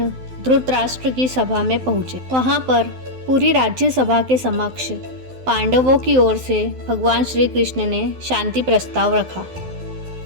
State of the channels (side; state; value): left; late; 12 ms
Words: धृतराष्ट्र की सभा में पहुंचे। वहां पर पूरी राज्यसभा के समक्ष पांडवों की ओर से भगवान श्री कृष्ण ने शांति प्रस्ताव रखा,